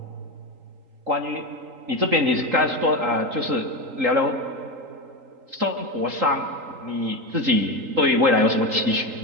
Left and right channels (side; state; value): left; late; 3.8 ms